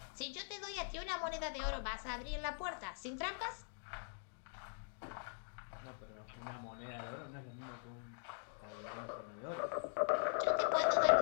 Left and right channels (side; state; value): right; silent; digital silence